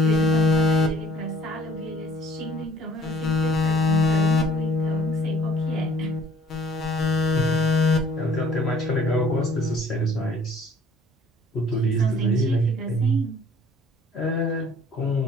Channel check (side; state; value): both; normal; correlation 0.56